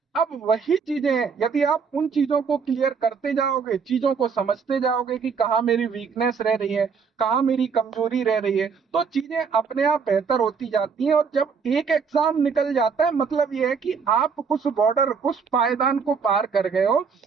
अब वही चीजें हैं, यदि आप उन चीजों को क्लियर करते जाओगे, चीजों को समझते जाओगे कि कहाँ मेरी वीकनेस रह रही है, कहाँ मेरी कमजोरी रह रही है, तो चीजें अपने आप बेहतर होती जाती हैं। और जब एक एग्जाम निकल जाता है, मतलब ये है कि आप उस बॉर्डर, उस पायदान को पार कर गए हो।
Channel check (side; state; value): left; quieter; 5.8 dB